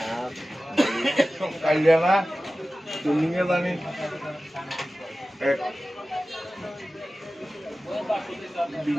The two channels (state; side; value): normal; both; correlation 0.96